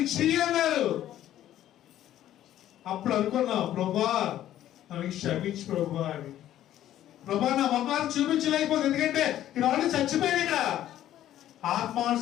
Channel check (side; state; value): right; quieter; 12.4 dB